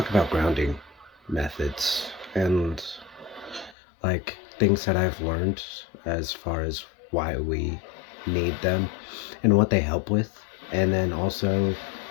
grounding methods and things that I've learned as far as why we need them and what they help with, and then also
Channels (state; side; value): drops out; right; at 3.8 s